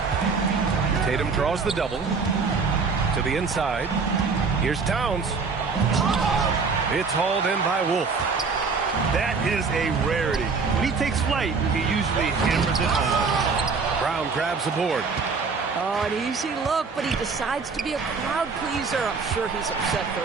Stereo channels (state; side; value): quieter; left; 4.8 dB